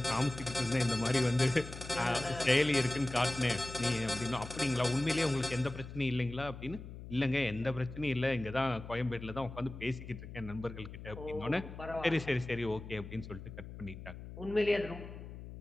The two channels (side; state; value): left; noise; hum, 12 dB below the sound